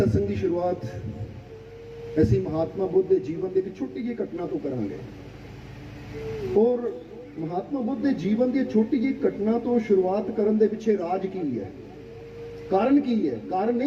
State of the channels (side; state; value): both; identical; correlation 1.00